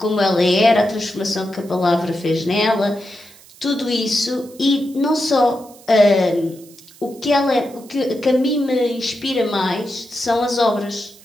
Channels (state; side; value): noise; right; hiss, 24 dB below the sound